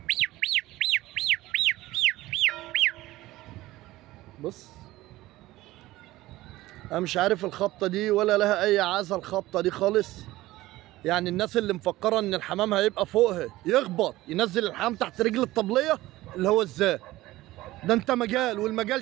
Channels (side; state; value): left; quieter; 17.3 dB